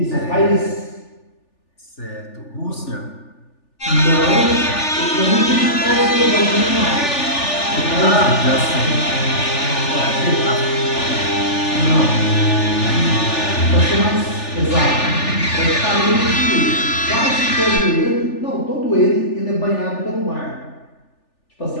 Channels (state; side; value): late; right; 3.4 ms